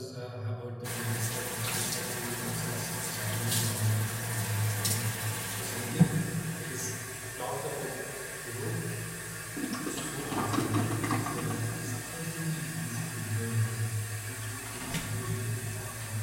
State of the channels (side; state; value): both; identical; correlation 1.00